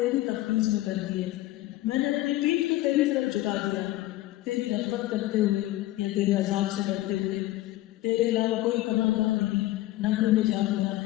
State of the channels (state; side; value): quieter; right; 16.4 dB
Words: تفویض میں کر دیے. میں نے اپنی پیٹھ کو تیری طرف جھکا دیا تیری رغبت کرتے ہوئے یا تیرے عذاب سے ڈرتے ہوئے. تیرے علاوہ کوئی پناہ نہیں, نہ کوئی میں جا ہوا ہے.